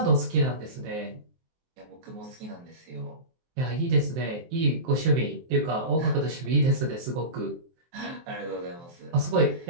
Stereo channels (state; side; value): late; left; 23 ms